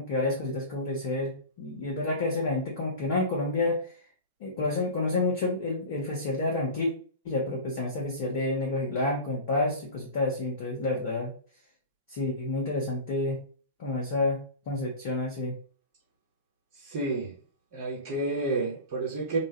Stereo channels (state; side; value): inverted; both; correlation -0.30